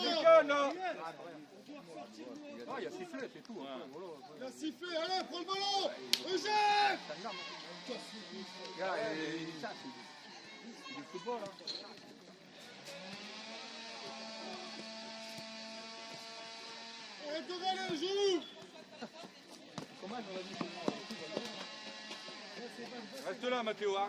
là. Ah, il y a sifflé, c'est tout. Il a sifflé, allez, prends le ballon. Eugène. Regarde, ça, c'est du football. Hein. Arrête de râler, joue. Comment j'aurais dit Reste là, Mathéo, hein,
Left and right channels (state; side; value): identical; both; correlation 1.00